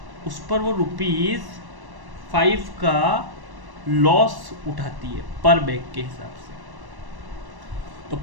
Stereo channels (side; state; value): left; late; 1.1 ms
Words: उस पर वो ₹5 का लॉस उठाती है पर बैग के हिसाब से। तो